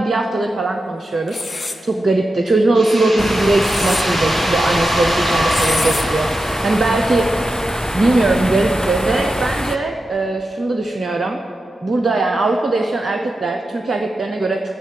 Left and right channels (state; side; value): normal; both; correlation 0.90